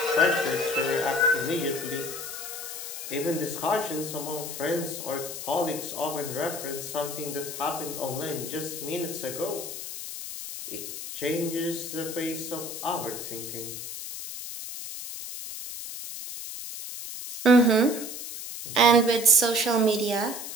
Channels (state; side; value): noise; left; hiss, 8 dB below the sound